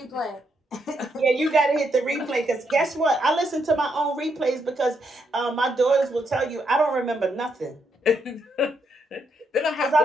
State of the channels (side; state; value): both; normal; correlation 0.78